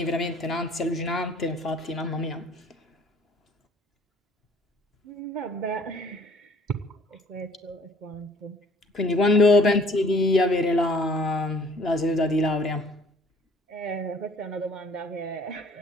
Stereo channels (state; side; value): normal; both; correlation 0.56